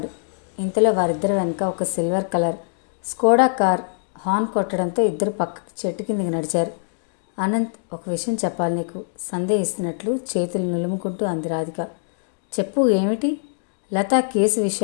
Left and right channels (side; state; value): right; silent; digital silence